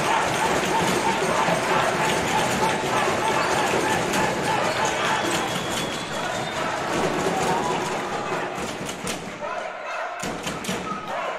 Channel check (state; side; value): identical; both; correlation 1.00